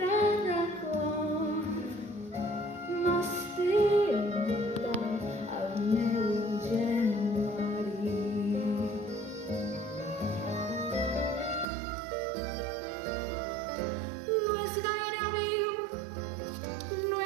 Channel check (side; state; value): left; drops out; at 11.7 s